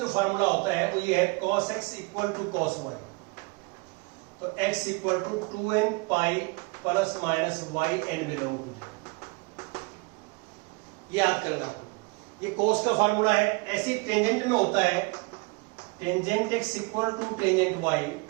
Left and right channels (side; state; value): left; quieter; 27.3 dB